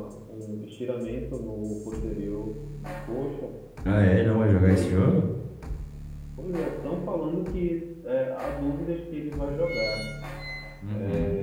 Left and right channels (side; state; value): both; identical; correlation 1.00